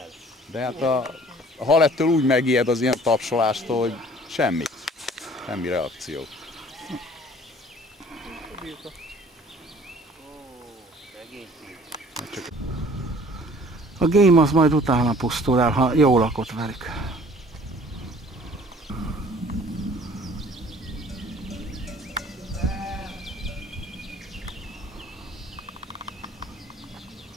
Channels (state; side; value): normal; both; correlation 0.52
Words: De hát a hal ettől úgy megijed az ilyen tapsolástól, hogy semmi. Semmi reakció. A game az majd utána pusztul el, ha jól lakott velük.